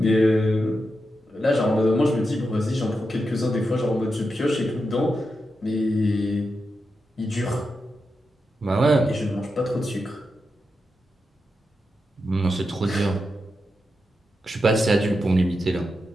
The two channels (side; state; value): both; normal; correlation 0.88